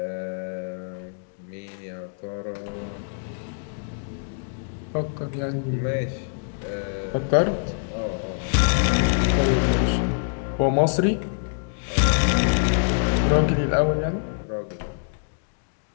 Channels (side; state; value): right; silent; digital silence